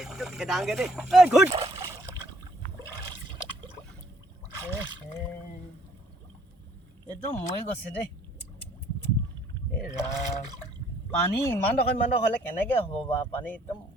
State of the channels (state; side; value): normal; both; correlation 0.63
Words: খেদাংগে দেই। এইটো মৰি গৈছে দেই। পানী ইমান ডোখৰ হ'লে কেনেকে হ'ব বাৰু? পানী একদম